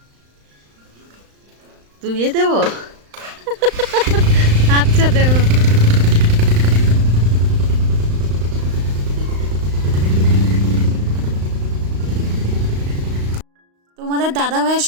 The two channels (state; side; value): late; left; 35 ms